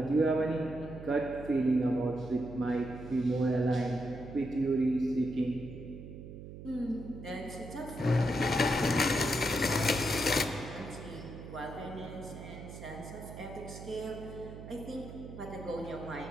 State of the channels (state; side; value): noise; right; hum, 12 dB below the sound